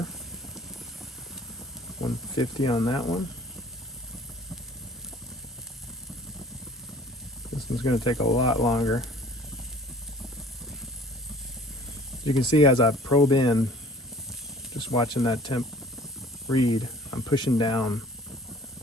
150 on that one. This one's gonna take a lot longer. You can see as I probe in, just watching that temp read, I'm pushing down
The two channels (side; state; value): both; normal; correlation 0.50